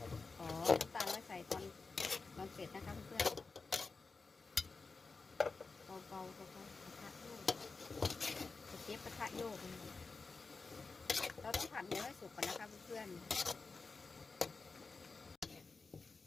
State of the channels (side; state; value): right; quieter; 4.2 dB